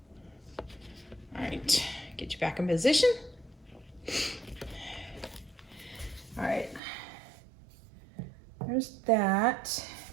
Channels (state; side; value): drops out; left; at 6.8 s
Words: All right, get you back in position. All right. There's that.